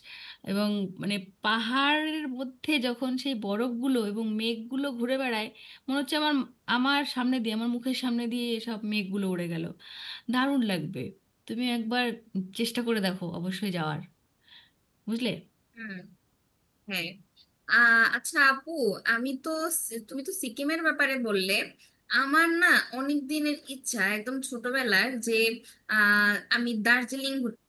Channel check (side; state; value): both; identical; correlation 1.00